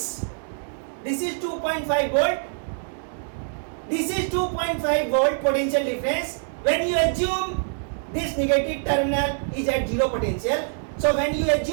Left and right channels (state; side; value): silent; left; digital silence